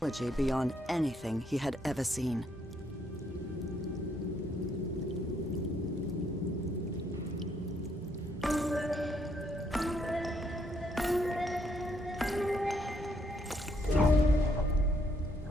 beyond anything he had ever seen.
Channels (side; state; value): both; normal; correlation 0.72